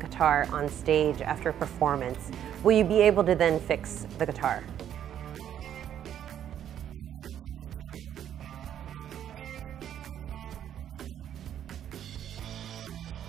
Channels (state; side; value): quieter; left; 10.1 dB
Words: on stage after a performance? Will you be able to then fix the guitar?